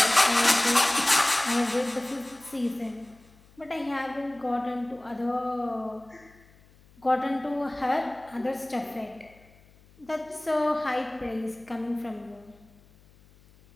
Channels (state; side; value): noise; left; hum, 28 dB below the sound